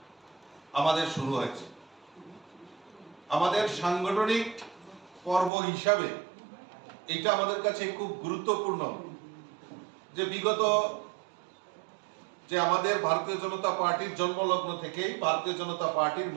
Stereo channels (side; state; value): left; drops out; at 5.5 s